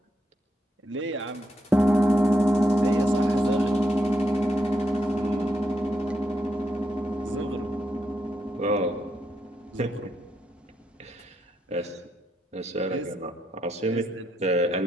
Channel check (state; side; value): normal; both; correlation 0.81